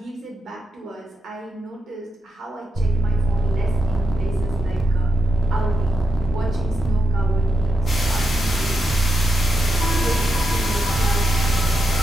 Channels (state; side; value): normal; both; correlation 0.86